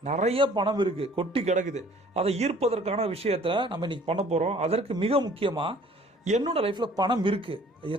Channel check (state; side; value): normal; both; correlation 0.54